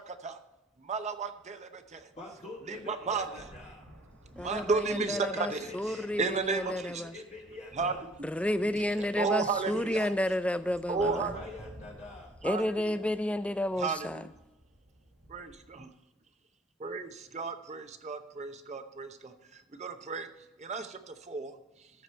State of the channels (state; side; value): normal; both; correlation 0.55